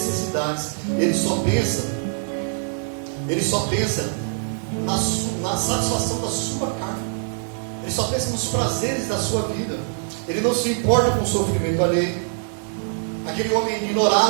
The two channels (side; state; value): left; silent; digital silence